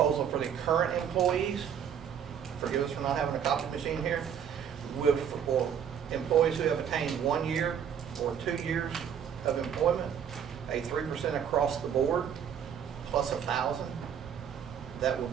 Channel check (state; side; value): quieter; left; 8.4 dB